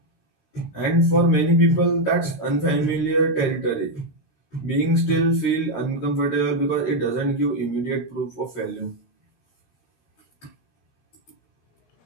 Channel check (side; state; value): right; late; 16 ms